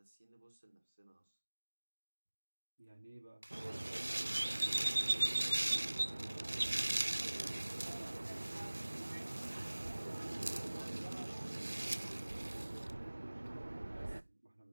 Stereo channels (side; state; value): both; inverted; correlation -1.00